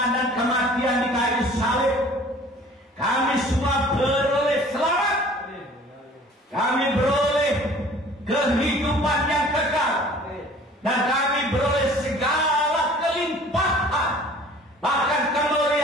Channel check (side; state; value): both; normal; correlation 0.49